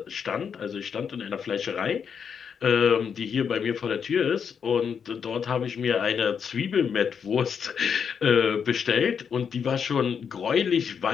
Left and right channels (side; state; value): right; quieter; 6.9 dB